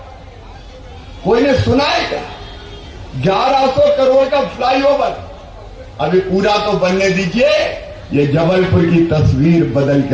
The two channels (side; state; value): both; identical; correlation 1.00